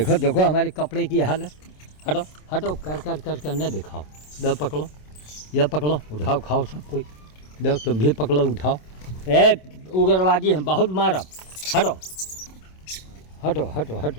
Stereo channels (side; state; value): right; late; 27 ms